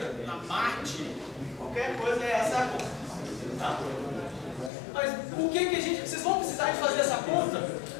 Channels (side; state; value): right; drops out; at 4.7 s